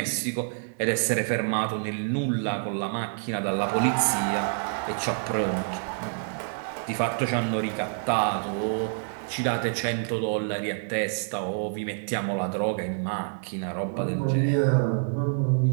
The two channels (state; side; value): silent; left; digital silence